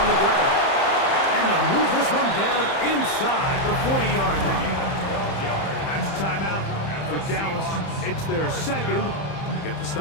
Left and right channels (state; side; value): late; right; 30 ms